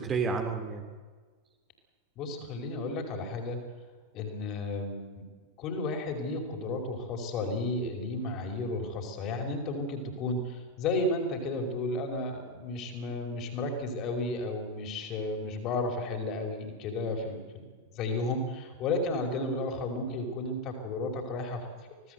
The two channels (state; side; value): normal; both; correlation 0.09